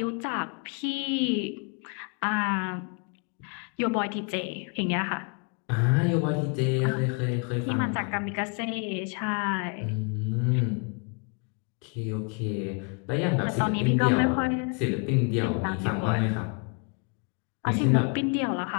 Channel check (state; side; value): quieter; right; 36.2 dB